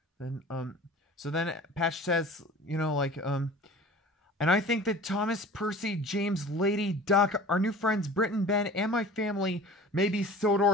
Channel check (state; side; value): normal; both; correlation 0.41